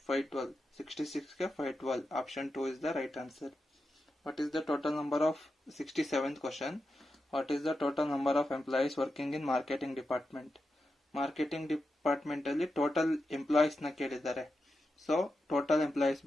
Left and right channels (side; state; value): both; normal; correlation 0.89